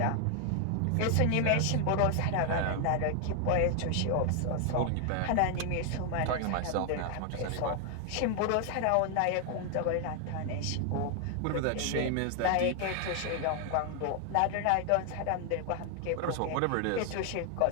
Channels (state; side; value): different; both; correlation 0.00